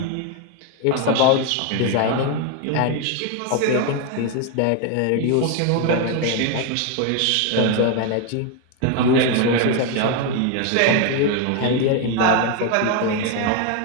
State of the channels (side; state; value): both; different; correlation 0.01